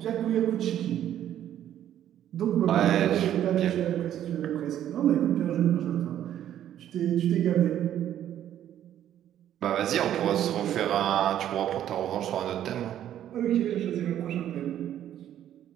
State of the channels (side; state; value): left; quieter; 11.2 dB